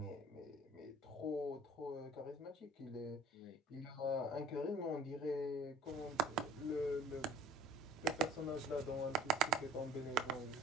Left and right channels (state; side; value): normal; both; correlation 0.48